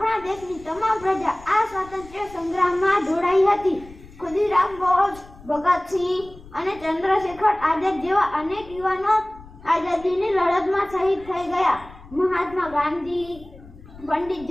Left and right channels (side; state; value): left; noise; rumble, 20 dB below the sound